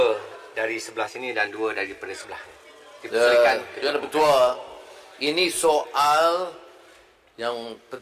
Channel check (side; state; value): both; identical; correlation 1.00